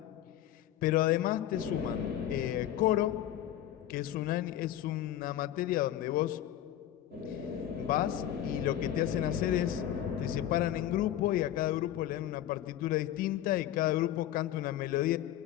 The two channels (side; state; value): right; quieter; 12.1 dB